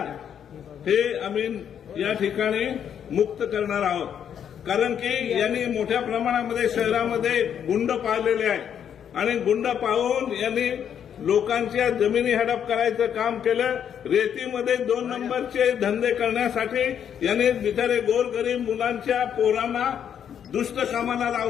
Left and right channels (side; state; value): right; quieter; 8.7 dB